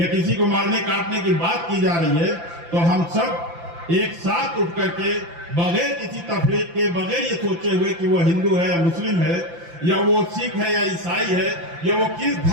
किसी को मारने काटने की बात की जा रही है, तो हम सब एक साथ उठ करके बगैर किसी तफरीक के, बगैर ये सोचे हुए कि वो हिंदू है या मुस्लिम है या वो सिख है या ईसाई है या वो किस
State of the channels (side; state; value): left; late; 5.9 ms